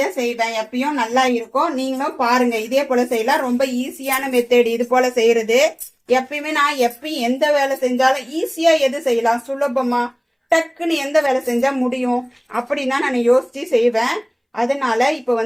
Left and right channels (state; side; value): identical; both; correlation 1.00